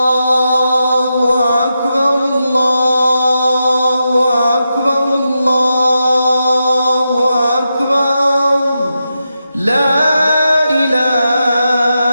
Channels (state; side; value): inverted; both; correlation -0.87